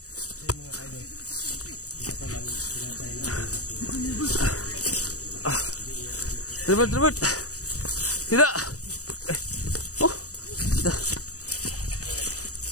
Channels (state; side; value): late; right; 0.66 ms